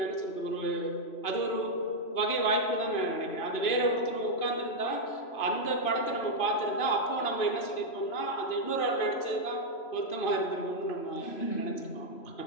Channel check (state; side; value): late; right; 3.0 ms